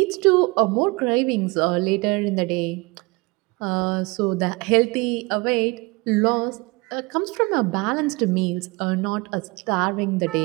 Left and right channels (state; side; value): quieter; left; 25.4 dB